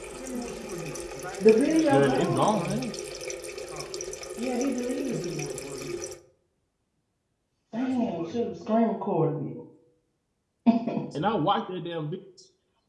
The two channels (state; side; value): identical; both; correlation 1.00